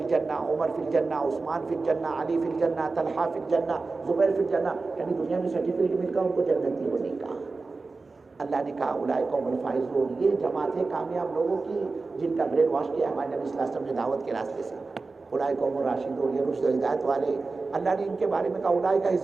الجنہ، عمر فی الجنہ، عثمان فی الجنہ، علی فی الجنہ، طلحہ فی الجنہ، زبیر فی الجنہ. یعنی دنیا میں سرٹیفکیٹ مل کر ان کو جنتی ہونے کا. اللہ نے کہا اولئک هم الفائزون، یہ جماعت ہے کامیاب لوگوں کی جن کا برین واش کیا ہمارے نبی صلی اللہ علیہ وسلم نے دعوت کے راستے سے. اولئک هم الراشدون، یہ رشد و ہدایت والے. اللہ نے ان کے بارے میں کہا اولئک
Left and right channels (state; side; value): quieter; left; 3.9 dB